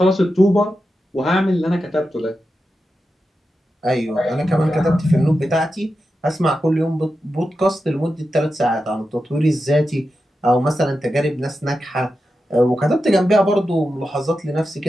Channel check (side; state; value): both; normal; correlation 0.90